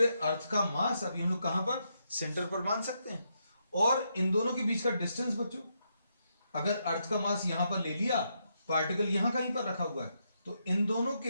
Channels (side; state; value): both; inverted; correlation -0.80